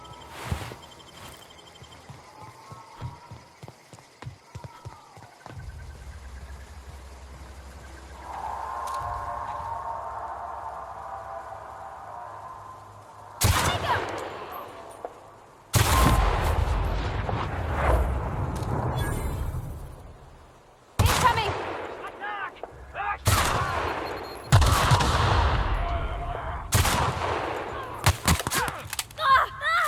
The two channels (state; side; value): identical; both; correlation 1.00